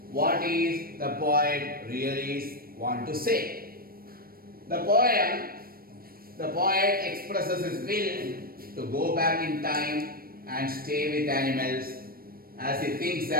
What is the poet really want to say? The poet expresses his will to go back in time and stay with animals as he thinks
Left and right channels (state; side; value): late; left; 0.43 ms